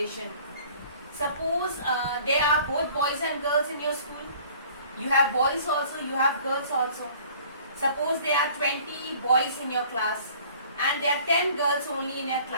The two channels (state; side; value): inverted; both; correlation -0.51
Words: Suppose there are both boys and girls in your school. You have boys also, you have girls also. Suppose there are 20 boys in your class and there are 10 girls only in your